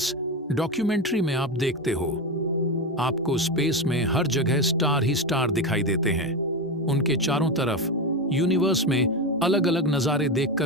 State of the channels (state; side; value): normal; both; correlation 0.16